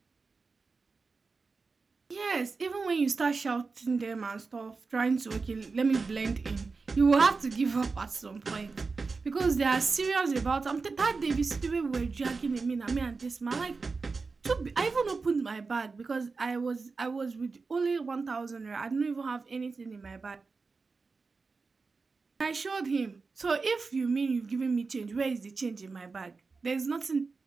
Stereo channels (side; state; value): left; quieter; 4.3 dB